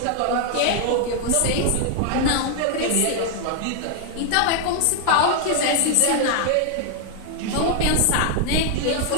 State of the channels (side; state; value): both; different; correlation 0.00